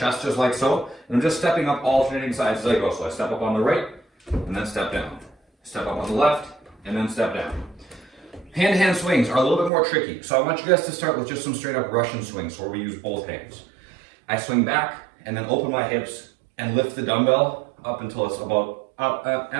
just like so. And I'm just stepping up alternating sides as I go. So I step up on the right, and then step down. Step up on the left, and then step down. Hand-to-hand swings are a little bit more tricky. So I want you guys to start with just some straight up Russian swings where we use both hands. I swing back, and then open my hips, and lift the dumbbell up until it's about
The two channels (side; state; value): left; drops out; at 9.7 s